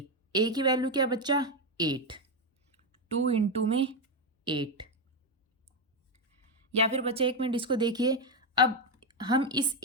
की वैल्यू क्या बच्चा 8, 2 इंटू में 8। या फिर बच्चा एक मिनट इसको देखिए, अब हम इस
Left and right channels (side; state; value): both; normal; correlation 0.06